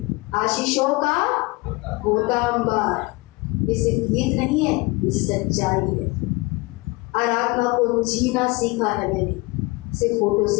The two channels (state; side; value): quieter; right; 24.6 dB